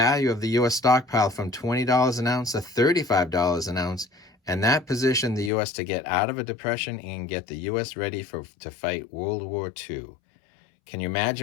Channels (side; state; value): right; drops out; at 5.5 s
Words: of the U.S. stockpile from $20 an ounce to $35 an ounce, and that positioned the U.S. to get out of a depression and get the U.S. ready to fight World War II. Can you